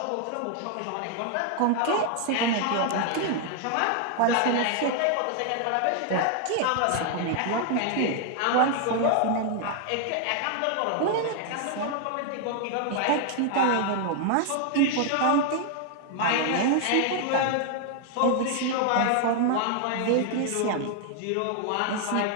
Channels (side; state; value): both; different; correlation 0.00